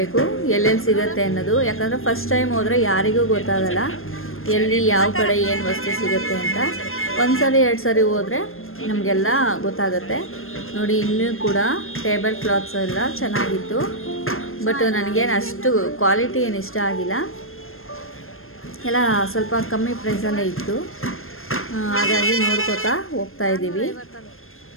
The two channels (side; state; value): right; late; 0.61 ms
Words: ಎಲ್ಲೆಲ್ಲಿ ಸಿಗುತ್ತೆ ಅನ್ನೋದು. ಯಾಕಂದರೆ ಫಸ್ಟ್ ಟೈಮ್ ಹೋದರೆ ಯಾರಿಗೂ ಗೊತ್ತಾಗಲ್ಲ ಎಲ್ಲಿ ಯಾವ ಕಡೆ ಏನು ವಸ್ತು ಸಿಗುತ್ತೆ ಅಂತ. ಒಂದು ಸರಿ 2 ಸರಿ ಹೋದರೆ ನಮಗೆಲ್ಲ ಗೊತ್ತಾಗುತ್ತೆ. ನೋಡಿ, ಇನ್ನೂ ಕೂಡ ಟೇಬಲ್ ಕ್ಲಾತ್ಸ್ ಎಲ್ಲ ಚೆನ್ನಾಗಿತ್ತು. ಬಟ್ ನನಗೇನು ಅಷ್ಟು ಕ್ವಾಲಿಟಿ ಏನು ಇಷ್ಟ ಆಗಿಲ್ಲ. ಎಲ್ಲ ಸ್ವಲ್ಪ ಕಮ್ಮಿ ಪ್ರೈಸಲ್ಲೇ ಇತ್ತು, ಹಾಗಾಗಿ ನೋಡ್ಕೋತಾ ಹೋಗ್ತಾ ಇದ್ದೀವಿ.